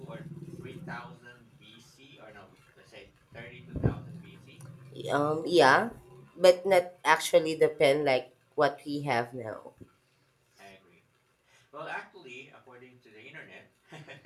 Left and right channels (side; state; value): both; identical; correlation 1.00